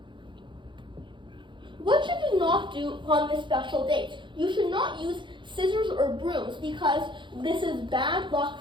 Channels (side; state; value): left; late; 0.23 ms